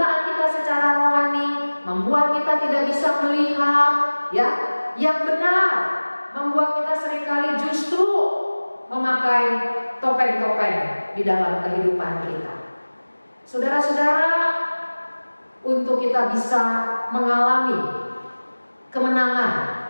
kita secara rohani membuat kita tidak bisa melihat, ya, yang benar, membuat kita seringkali justru memakai topeng-topeng di dalam kehidupan kita. Saudara-saudara, untuk kita bisa mengalami kemenangan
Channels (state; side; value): inverted; both; correlation -1.00